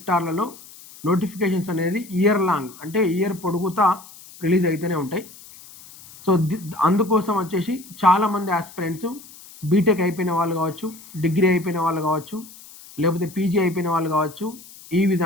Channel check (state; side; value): noise; left; hiss, 20 dB below the sound